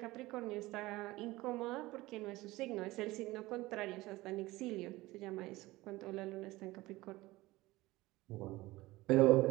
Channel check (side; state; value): left; quieter; 19.2 dB